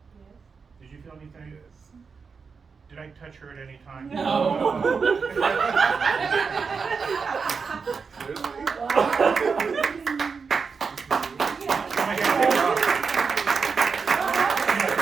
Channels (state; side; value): quieter; left; 5.3 dB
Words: Yes. Did you feel anything? Yes. Did I touch her at any time? No.